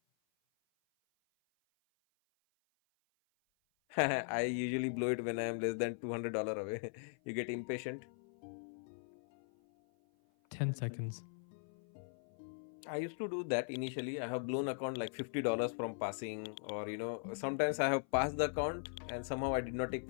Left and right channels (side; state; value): right; silent; 51 dB below the other